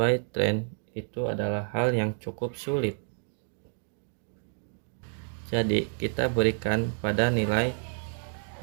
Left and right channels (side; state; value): left; silent; 58 dB below the other